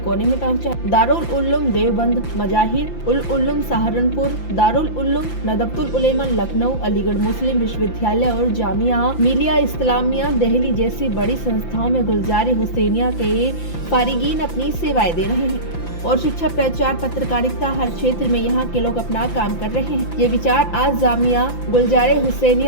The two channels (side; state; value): right; late; 5.9 ms